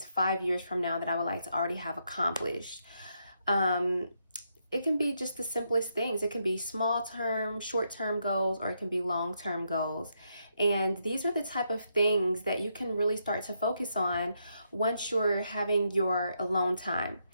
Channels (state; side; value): inverted; both; correlation -0.79